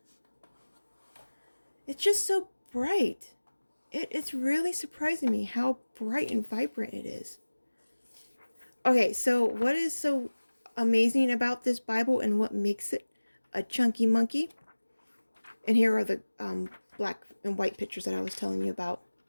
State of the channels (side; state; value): both; inverted; correlation -1.00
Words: It's just so bright. It's really surprising me how bright and vibrant it is. Okay, so what is so amazing about this Bible and what makes it a chunky monkey? And here are the black and white pictures that I was telling you about.